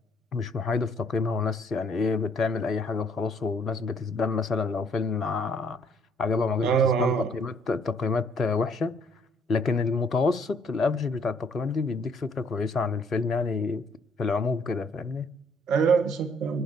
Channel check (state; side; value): normal; both; correlation 0.65